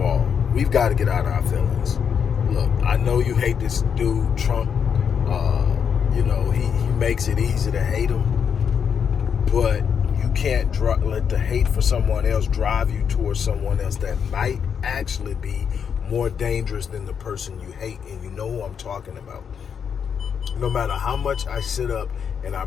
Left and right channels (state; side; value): quieter; right; 7.2 dB